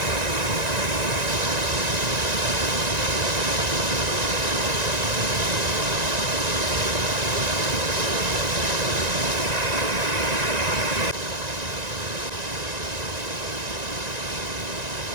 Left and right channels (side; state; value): left; late; 1.9 ms